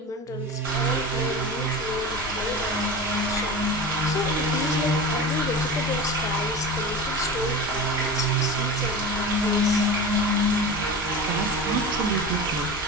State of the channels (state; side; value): normal; both; correlation 0.30